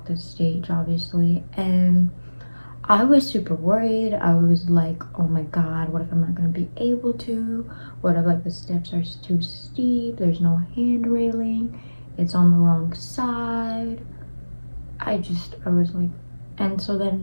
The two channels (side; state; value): both; inverted; correlation -1.00